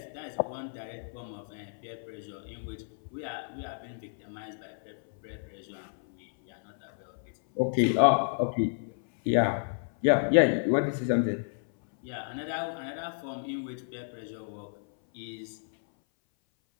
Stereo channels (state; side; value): silent; right; 57 dB below the other